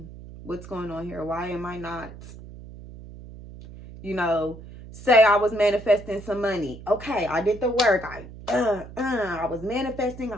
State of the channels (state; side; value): noise; right; hum, 15 dB below the sound